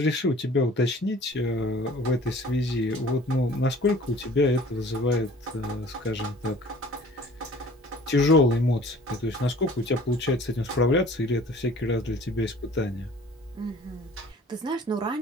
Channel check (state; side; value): normal; both; correlation 0.49